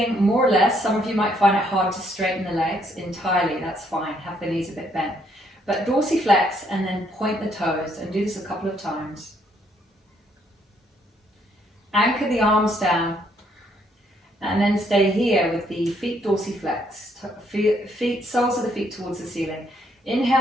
more or less. Some of you might find it hard to straighten the legs entirely. That's fine. Have the knees a bit bent. But dorsiflex and then point the toes, and do this a couple of times. Anchor the arms down, and then stay here with the feet dorsiflex. Soles of the feet towards the ceiling.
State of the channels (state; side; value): normal; both; correlation 0.70